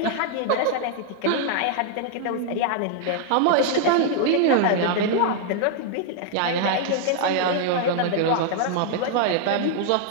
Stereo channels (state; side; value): different; both; correlation 0.00